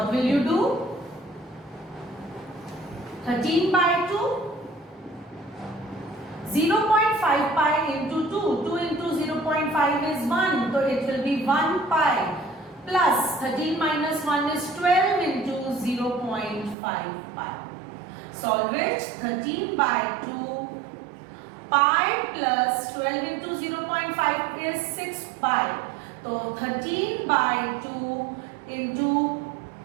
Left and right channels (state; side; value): drops out; left; at 16.8 s